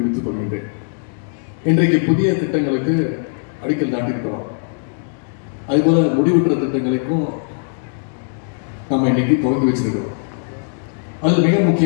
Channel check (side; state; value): right; silent; digital silence